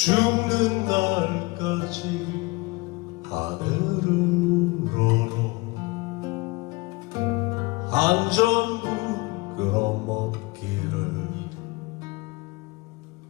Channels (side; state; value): right; quieter; 24.3 dB